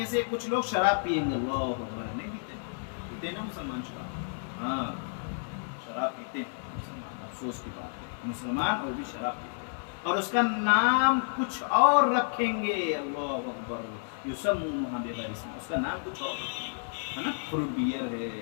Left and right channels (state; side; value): silent; right; 57 dB below the other